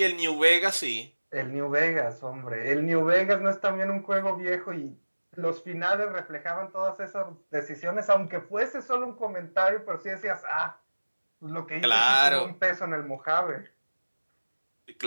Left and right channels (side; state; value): both; inverted; correlation -1.00